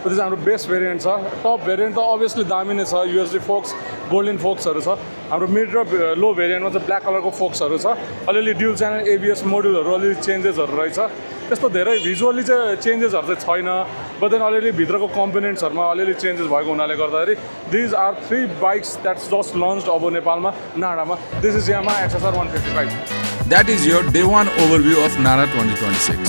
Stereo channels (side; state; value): both; inverted; correlation -1.00